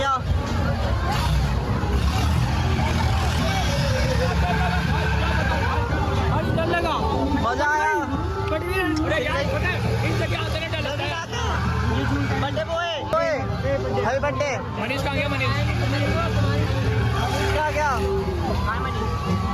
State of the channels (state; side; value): identical; both; correlation 1.00